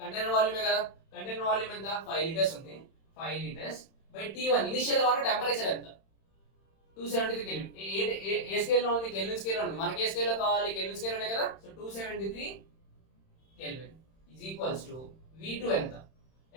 కంటైనర్ వాల్యూమే కదా. కంటైనర్ వాల్యూమ్ ఎంత? 5 లీటర్స్ ఉంది. 5 లీటర్స్ బై T1 ఇనిషియల్ గా ఉన్న టెంపరేచర్ ఎంత? 273 కెల్విన్. ఏ స్కేల్లో ఉంది? కెల్విన్ స్కేల్లో ఉంది. మనకి ఏ స్కేల్లో కావాలి? కెల్విన్ స్కేల్లోనే కదా. So 273 kelvin is equals to V2 ఎంత?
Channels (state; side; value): late; right; 31 ms